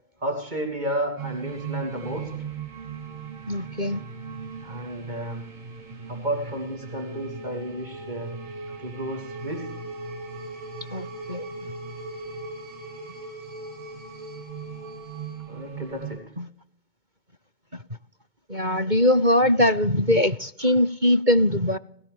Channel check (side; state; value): left; late; 2.2 ms